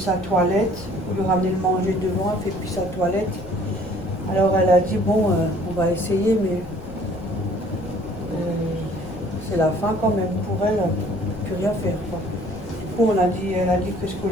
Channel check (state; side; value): noise; left; rumble, 14 dB below the sound